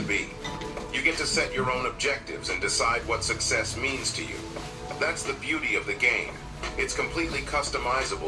be. You get to set your own objectives and decide what success means to you. That's the beauty of the game. It's completely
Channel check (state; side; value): identical; both; correlation 1.00